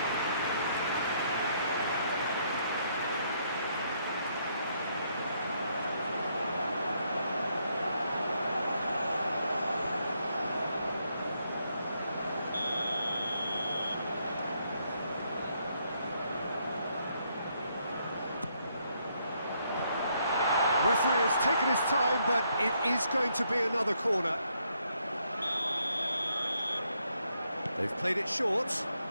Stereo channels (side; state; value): both; inverted; correlation -0.74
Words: Referee has taken his time, but it is going to be another corner. They've played it short.